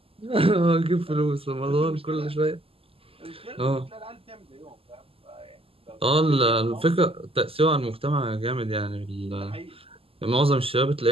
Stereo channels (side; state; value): left; late; 0.27 ms